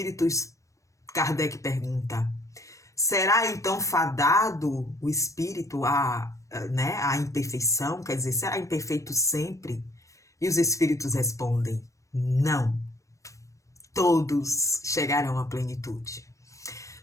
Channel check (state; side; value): late; right; 0.15 ms